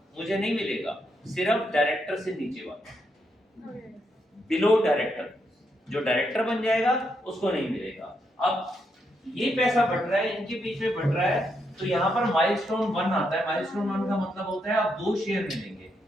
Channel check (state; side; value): normal; both; correlation 0.79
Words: मुझे नहीं मिलेगा, सिर्फ डायरेक्टर से नीचे वाला, बिलो डायरेक्टर, जो डायरेक्टर बन जाएगा उसको नहीं मिलेगा। अब ये पैसा बढ़ रहा है, इनके बीच में बढ़ रहा है, तो यहाँ पर माइलस्टोन 1 आता है। माइलस्टोन 1 का मतलब होता है आप 2 शेयर मिलेंगे।